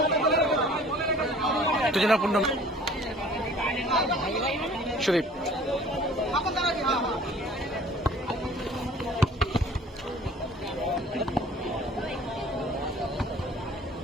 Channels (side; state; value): both; normal; correlation 0.50